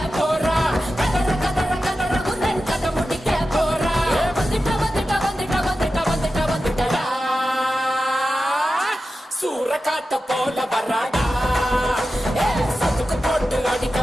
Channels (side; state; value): both; normal; correlation 0.92